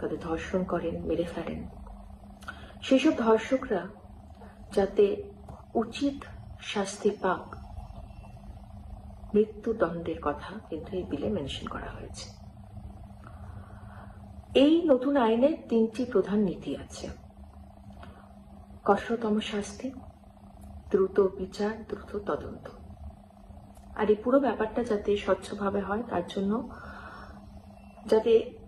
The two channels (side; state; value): both; identical; correlation 1.00